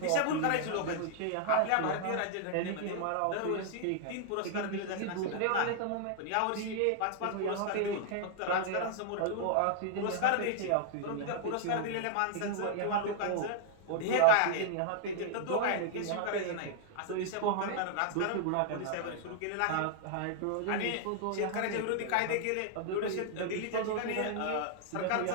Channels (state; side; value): different; both; correlation -0.01